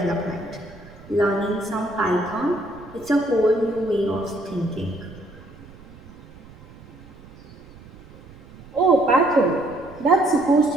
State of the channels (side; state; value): right; noise; rumble, 20 dB below the sound